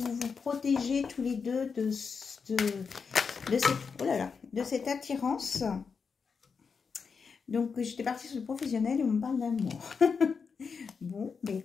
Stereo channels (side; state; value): right; quieter; 5.6 dB